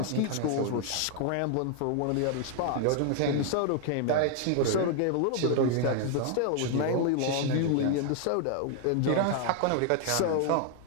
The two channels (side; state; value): both; different; correlation 0.00